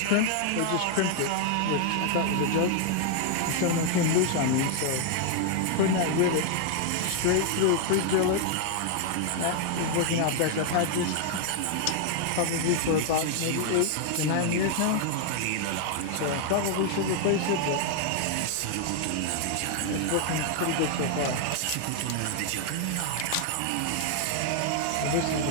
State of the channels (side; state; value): both; different; correlation 0.00